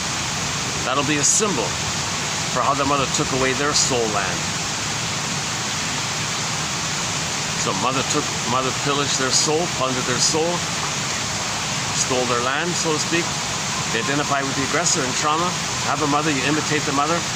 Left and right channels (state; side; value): identical; both; correlation 1.00